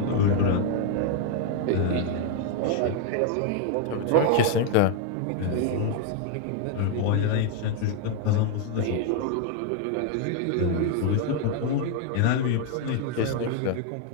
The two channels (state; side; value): different; both; correlation 0.00